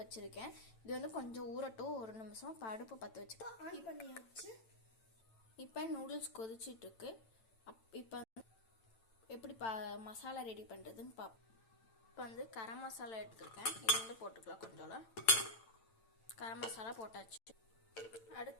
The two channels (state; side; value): late; right; 8.9 ms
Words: இது வந்து கொஞ்சம் ஊறட்டும், ஒரு நிமிஷம். இப்போ அடுப்பு பற்ற வச்சுட்டு ஆன் பண்ணியாச்சு. இப்போ நூடுல்ஸ் கொதிச்சிட்ருக்கு. இப்போ எப்படி மசாலா ரெடி பண்ணுறதுன்னு பார்ப்போம். இப்போ வந்து கரம் மசாலா எடுத்துருக்கேன். இது வந்து போட்டுக்கலாம். கொஞ்சம் கரம் மசாலா போட்டாச்சு.